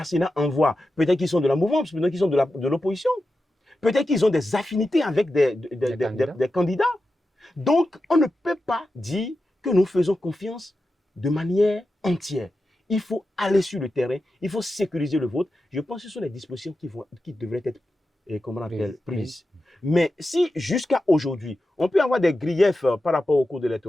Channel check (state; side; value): normal; both; correlation 0.91